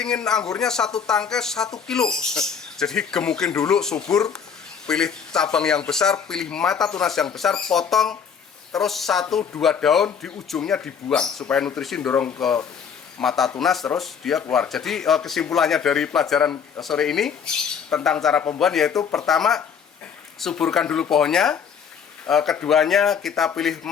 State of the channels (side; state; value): right; quieter; 7.0 dB